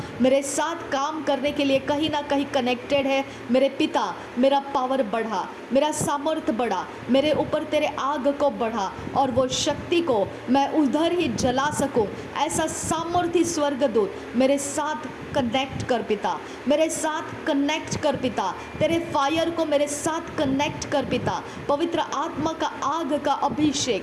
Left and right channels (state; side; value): identical; both; correlation 1.00